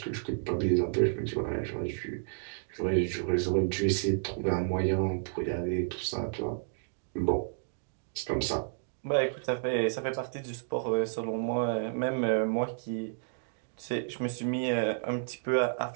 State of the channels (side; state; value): left; silent; digital silence